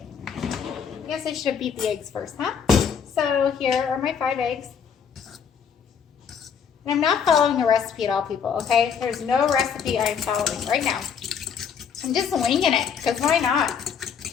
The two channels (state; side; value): quieter; right; 7.0 dB